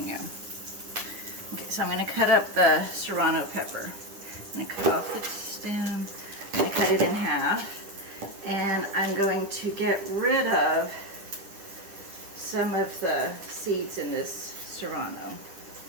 Okay, so I'm going to cut up the serrano pepper. I'm going to cut off the stem, I'm going to cut it in half, and I'm going to get rid of some of the seeds in this serrano.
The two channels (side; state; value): left; late; 10 ms